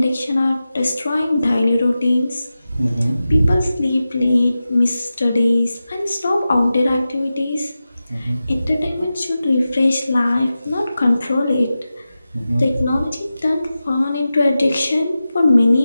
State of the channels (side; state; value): both; inverted; correlation -0.93